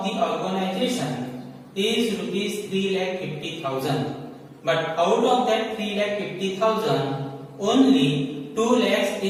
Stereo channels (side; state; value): both; identical; correlation 1.00